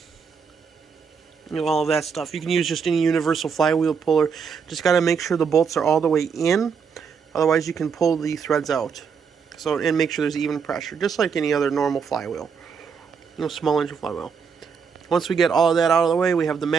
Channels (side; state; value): left; quieter; 6.2 dB